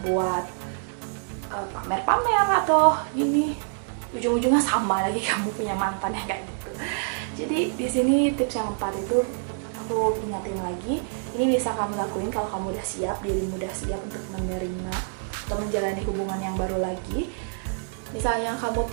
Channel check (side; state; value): left; silent; digital silence